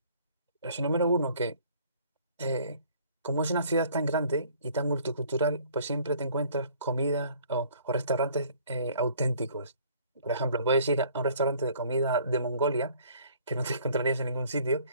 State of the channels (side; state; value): both; inverted; correlation -0.56